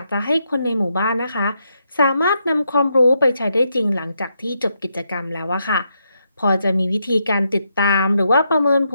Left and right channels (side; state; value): both; inverted; correlation -0.81